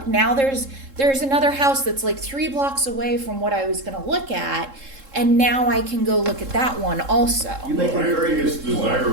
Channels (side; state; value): left; late; 3.7 ms